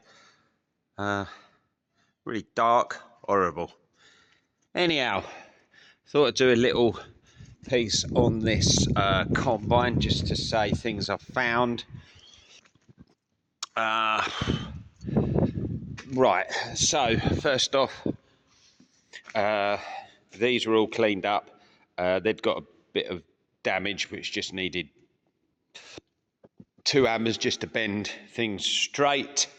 Really dark, horrible. Anyhow, thought I'd do a little piece on this combine just to say things I've found. Right, so first off, these were all cleaned up. They'd got a bit of damage which just needed 2 hammers just to bend things straight.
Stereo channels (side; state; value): both; identical; correlation 1.00